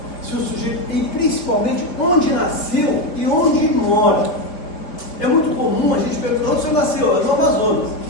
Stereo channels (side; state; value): right; late; 4.4 ms